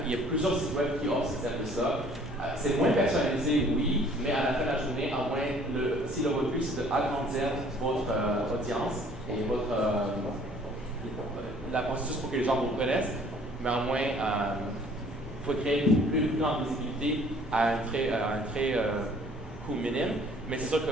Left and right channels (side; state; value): both; normal; correlation 0.55